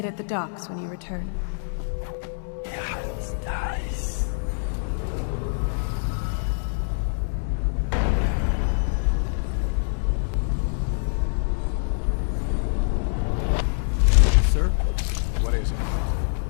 at the docks when you return. It's nice. Sir? What is it?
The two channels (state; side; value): silent; right; digital silence